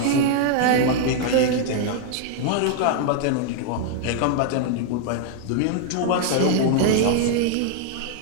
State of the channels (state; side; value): different; both; correlation 0.00